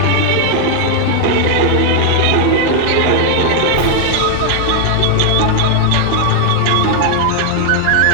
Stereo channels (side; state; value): both; different; correlation 0.00